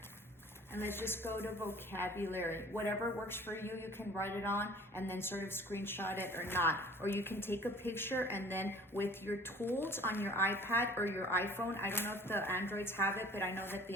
And let's just go to vocabulary. Whatever works for you, you can write it on and then sort of screenshot it or not. Or you can take a picture, and then with your tools on your iPad or your iPhone, I don't know if the Androids have it, but I know that the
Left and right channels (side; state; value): both; normal; correlation 0.48